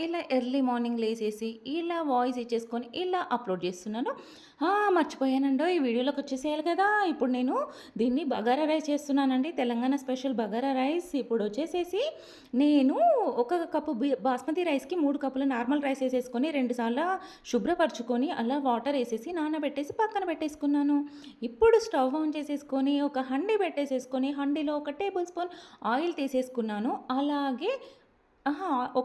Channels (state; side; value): identical; both; correlation 1.00